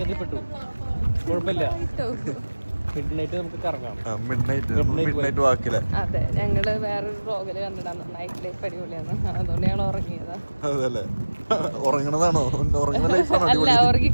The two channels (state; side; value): inverted; both; correlation -1.00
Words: കുഴപ്പമില്ല. മിഡ്നൈറ്റ് വാക്കില്ല. അതെ, ഞങ്ങള് വേറൊരു വ്ലോഗില് കണ്ടിട്ടാണ് നൈറ്റ് ലൈഫ് അടിപൊളിയാണ്, അതുകൊണ്ട് ഞങ്ങൾ ഉറങ്ങിയതാ. അതല്ലേ, ഉറങ്ങണതാണോ? അല്ല, ഉറങ്ങി